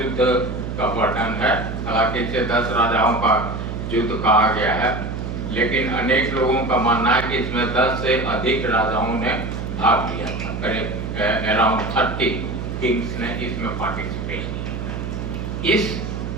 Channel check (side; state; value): right; noise; hum, 5 dB below the sound